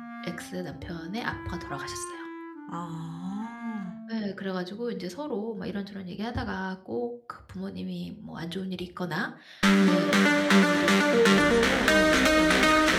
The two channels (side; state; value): both; identical; correlation 1.00